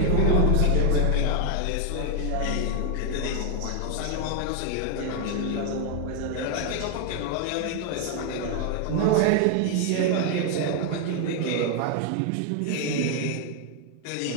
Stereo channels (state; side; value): different; both; correlation 0.00